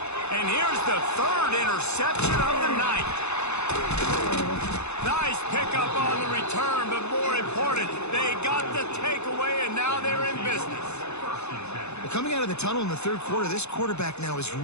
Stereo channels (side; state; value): right; late; 0.81 ms